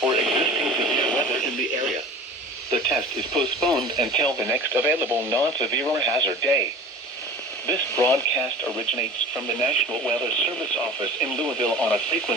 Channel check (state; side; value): normal; both; correlation 0.39